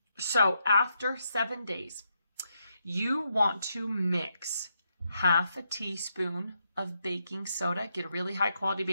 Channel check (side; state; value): both; inverted; correlation -0.80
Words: So after 7 days, you want to mix half a teaspoon of baking soda. Get a really high quality